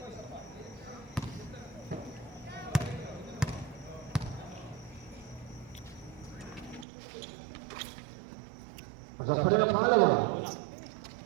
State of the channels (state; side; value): drops out; left; at 6.9 s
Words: Sa pala ng pangalawa.